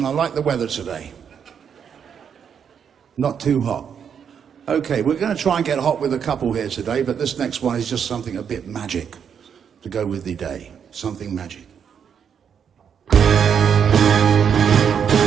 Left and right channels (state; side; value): quieter; left; 7.6 dB